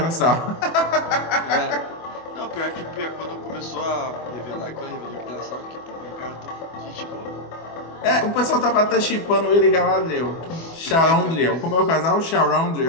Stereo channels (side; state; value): right; late; 24 ms